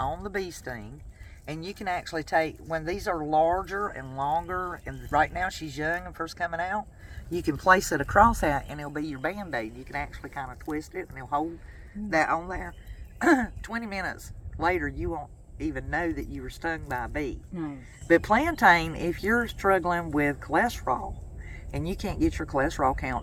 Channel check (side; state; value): both; identical; correlation 1.00